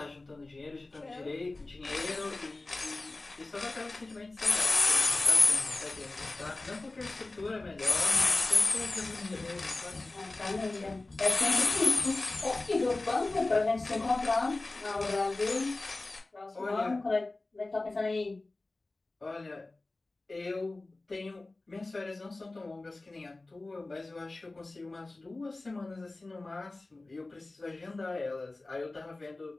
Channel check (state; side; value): quieter; right; 3.1 dB